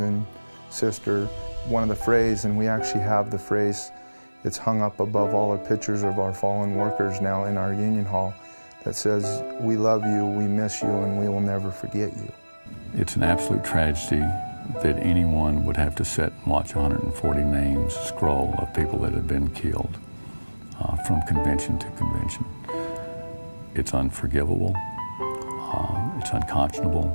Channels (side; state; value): both; inverted; correlation -1.00